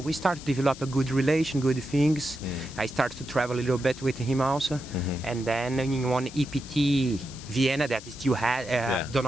we start to develop a good relation, good things. I start to travel a little bit with him also. And then in one EPT Vienna that still do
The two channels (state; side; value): noise; left; hiss, 16 dB below the sound